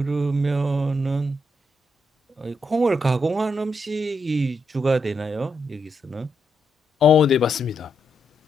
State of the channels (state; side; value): normal; both; correlation 0.81